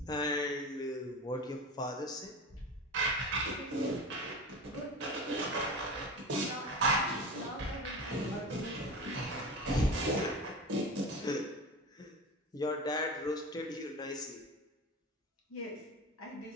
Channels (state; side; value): normal; both; correlation 0.30